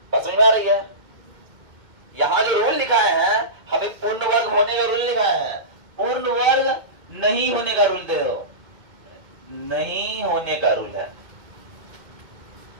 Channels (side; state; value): left; late; 2.0 ms